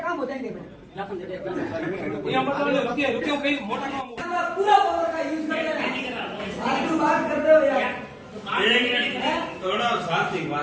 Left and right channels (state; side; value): identical; both; correlation 1.00